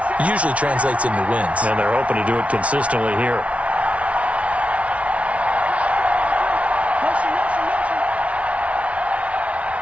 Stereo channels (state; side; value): late; left; 0.064 ms